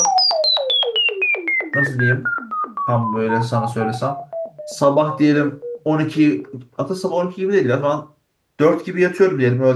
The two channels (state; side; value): identical; both; correlation 1.00